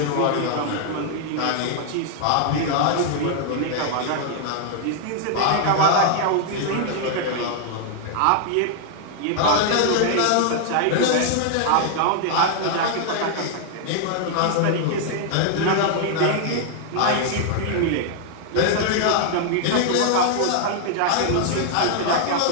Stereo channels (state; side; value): different; both; correlation 0.00